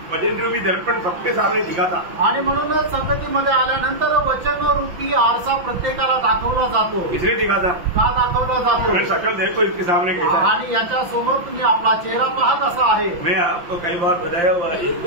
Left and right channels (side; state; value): left; late; 5.8 ms